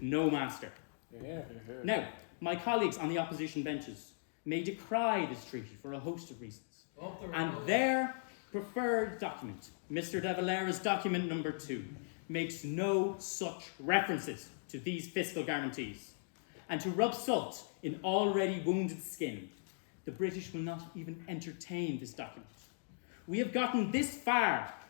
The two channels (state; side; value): silent; right; digital silence